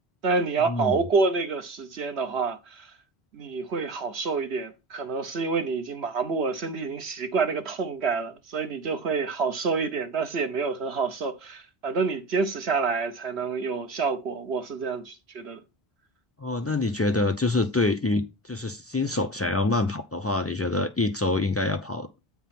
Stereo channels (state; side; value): normal; both; correlation 0.30